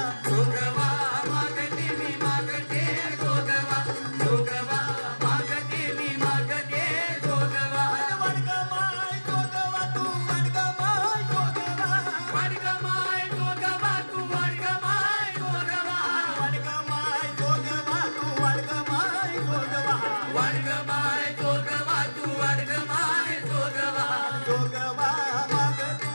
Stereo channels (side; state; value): both; inverted; correlation -1.00